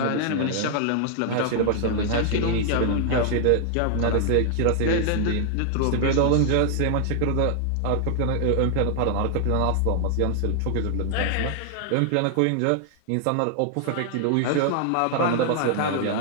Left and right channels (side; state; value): both; different; correlation 0.00